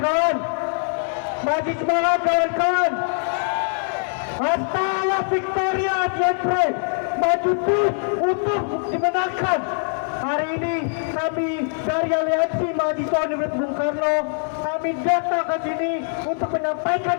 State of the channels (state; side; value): silent; right; digital silence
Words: maju semangat kawan-kawan. Hasta la victoria siempre, maju terus untuk dimenangkan. Hari ini kami dari Aliansi Mahasiswa Universitas Bung Karno, kami datang ke sini untuk menyampaikan